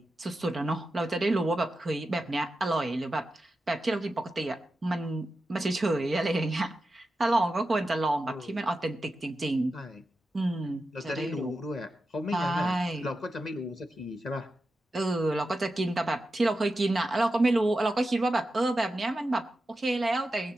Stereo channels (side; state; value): both; normal; correlation 0.91